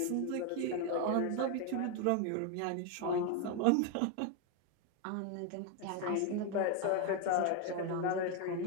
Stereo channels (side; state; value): both; different; correlation 0.01